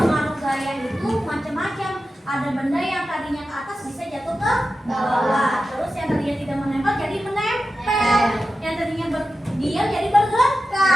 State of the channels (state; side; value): normal; both; correlation 0.92